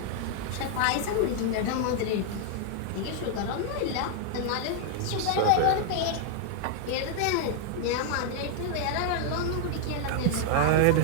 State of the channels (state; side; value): different; both; correlation 0.00